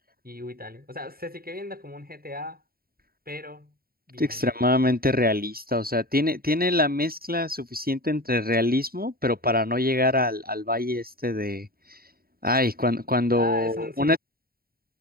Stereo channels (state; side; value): late; left; 0.43 ms